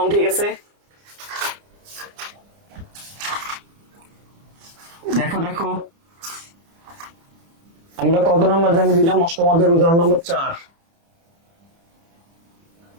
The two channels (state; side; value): late; left; 30 ms